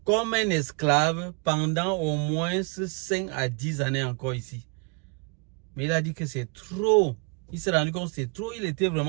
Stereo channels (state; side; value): quieter; left; 32.1 dB